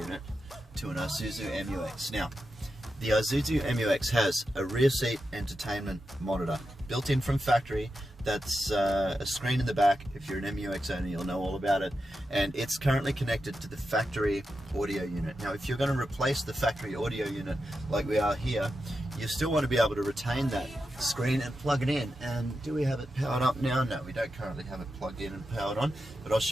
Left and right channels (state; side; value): normal; both; correlation 0.89